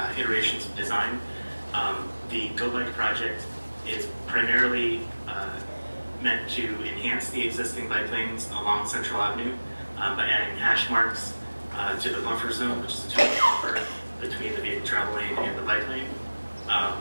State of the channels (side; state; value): both; inverted; correlation -1.00